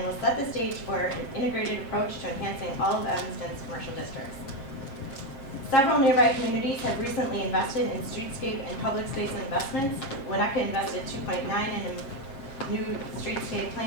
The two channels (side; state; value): right; late; 7.5 ms